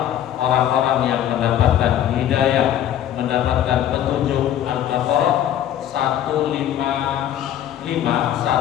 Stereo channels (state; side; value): quieter; right; 11.0 dB